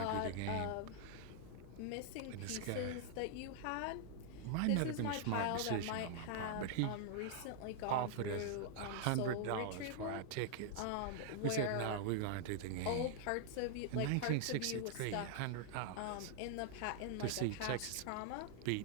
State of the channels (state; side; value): different; both; correlation -0.01